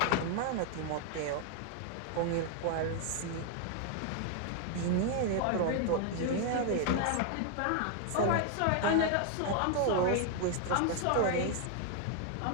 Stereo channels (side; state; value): both; different; correlation 0.00